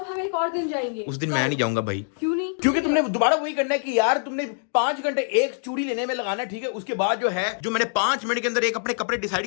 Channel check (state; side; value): silent; right; digital silence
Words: एक और दिन जाएंगे। उस दिन मैं नहीं जाऊंगा भाई। क्यों नहीं? क्योंकि तुमने दोबारा वही करना है कि यार तुमने 5 घंटे एक चूड़ी लेने में लगाना, ठीक है। उसके बाद जो है जो मैंने 5 मिनट के अंदर एक अपने कपड़े डिसाइड